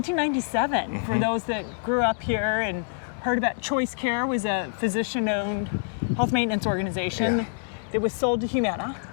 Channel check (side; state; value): right; silent; digital silence